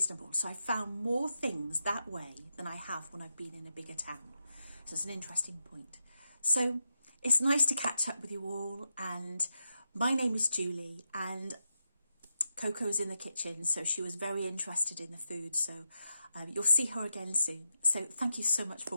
So I found more things that way than I have when I've been in a bigger town. So it's an interesting point. So it's nice to catch up with you all, and my name is Julie, and Coco's in the kitchen, so she was very interested in the food, so you'll see her again soon. So thank you so much for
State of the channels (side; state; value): both; inverted; correlation -0.86